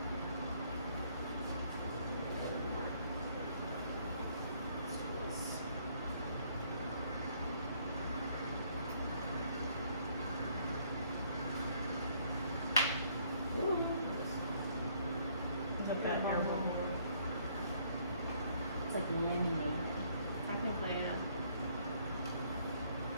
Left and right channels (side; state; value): both; inverted; correlation -0.65